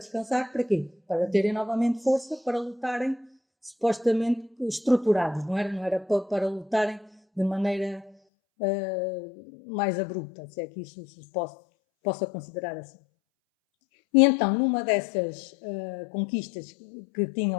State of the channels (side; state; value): right; drops out; at 8.2 s